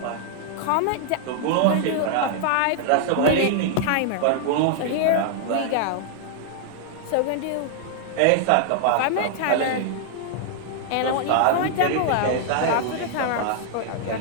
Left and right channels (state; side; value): different; both; correlation 0.00